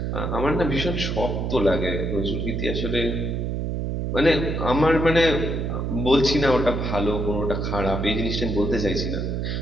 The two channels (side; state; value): right; noise; hum, 1 dB below the sound